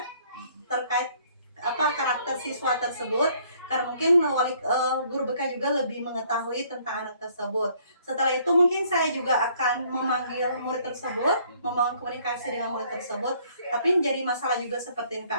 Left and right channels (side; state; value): both; inverted; correlation -0.62